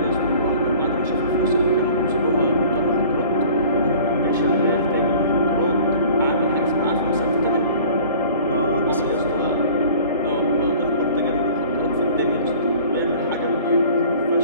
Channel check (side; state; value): both; inverted; correlation -0.47